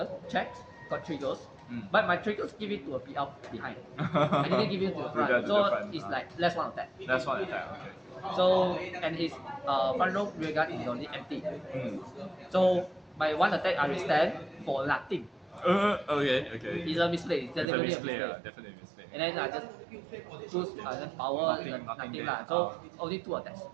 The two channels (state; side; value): drops out; left; at 17.7 s